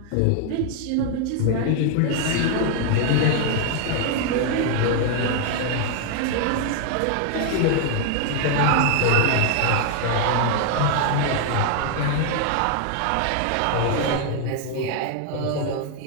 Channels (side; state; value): both; different; correlation 0.00